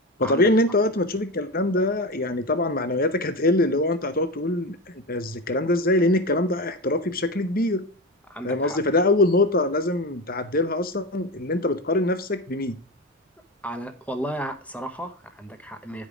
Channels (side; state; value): both; normal; correlation 0.22